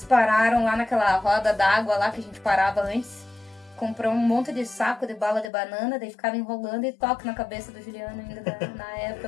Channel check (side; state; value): right; drops out; at 5.5 s